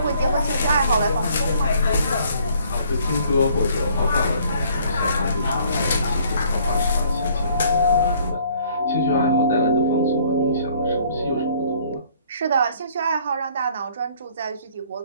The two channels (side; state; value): both; inverted; correlation -0.60